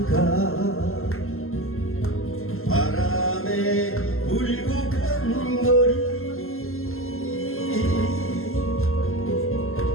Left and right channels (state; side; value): late; right; 0.62 ms